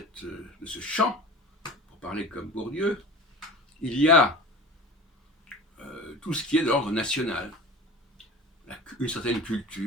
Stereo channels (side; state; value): both; normal; correlation 0.35